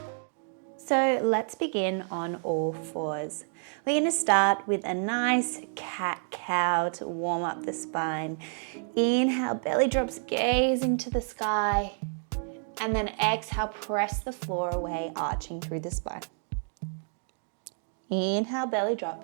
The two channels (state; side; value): silent; left; 58 dB below the other